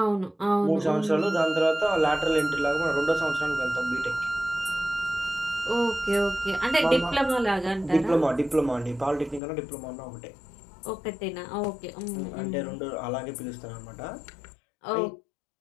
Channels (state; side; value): drops out; right; at 9.4 s